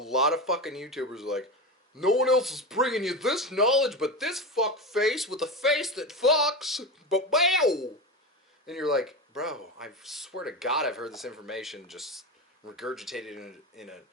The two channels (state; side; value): normal; both; correlation 0.20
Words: of fucking YouTubers are like, no one else is bringing you this knowledge but this fuck face with a face that fucks. But wow! And you're like, bro, I swear to God I've heard this information just regurgitated in a